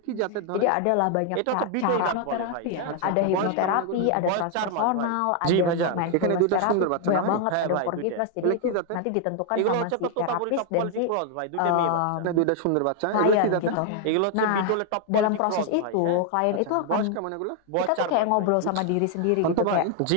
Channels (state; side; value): different; both; correlation 0.00